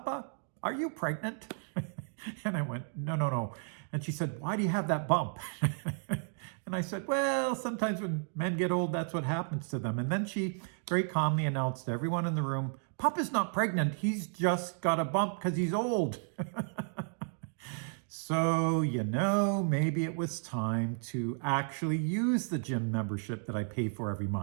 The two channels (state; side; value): silent; left; 56 dB below the other